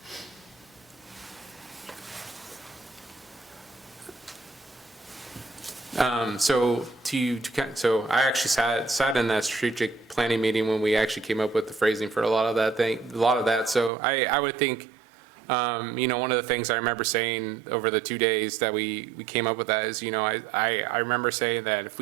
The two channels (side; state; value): left; drops out; at 13.9 s